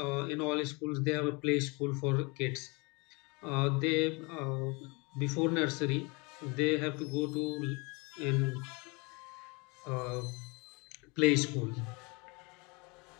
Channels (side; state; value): right; quieter; 28.8 dB